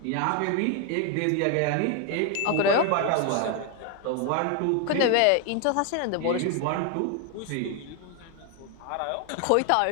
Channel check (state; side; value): different; both; correlation 0.01